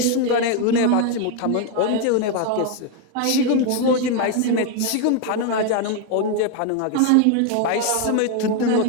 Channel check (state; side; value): different; both; correlation 0.01